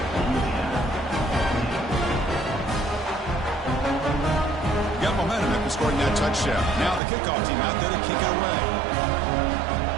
Scoring that touchdown. Now the kickoff team out there to kick it away.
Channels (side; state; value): left; drops out; at 7.0 s